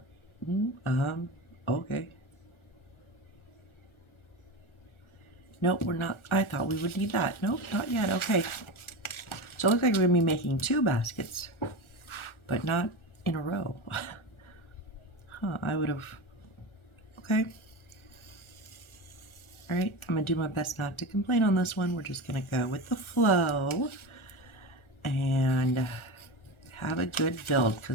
okay. Nope, we're not, I thought we would need that. Nope, not yet, okay. So it looks like we're gonna be making 2 baskets, but not in a row. Huh, I would have, okay. All right, I'm gonna do my best not to complain on this one. We're just gonna go with the flow and have a good build,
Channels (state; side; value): late; right; 1.4 ms